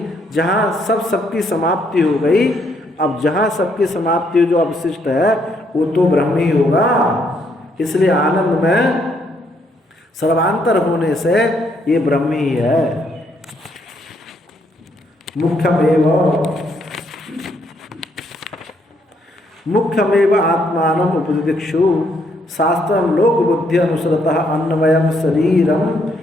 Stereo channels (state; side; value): normal; both; correlation 0.72